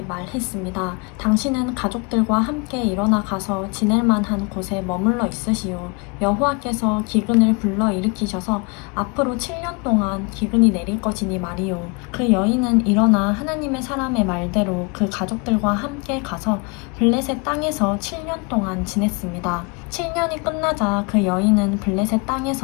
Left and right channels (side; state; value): right; quieter; 31.6 dB